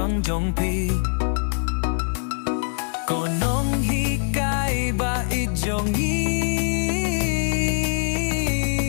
jong ko nonghikai baieid jong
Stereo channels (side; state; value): right; silent; 63 dB below the other